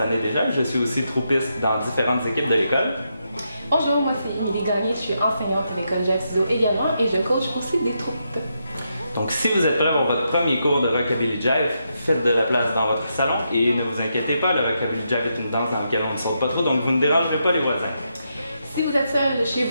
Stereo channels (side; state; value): both; inverted; correlation -0.82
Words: années déjà. Je suis aussi troupiste dans différentes équipes de l'école. Bonjour, moi c'est Émilie Gagné, je suis enseignante à l'école Jive Studio également et je coach aussi des troupes. Donc si vous êtes prêts pour votre premier cours de Rockabilly Jive, faites de la place dans votre salon et ne vous inquiétez pas, le Rockabilly Jive est une danse dans laquelle on ne saute pas trop, donc vous ne dérangerez pas les voisins. Si vous êtes seul chez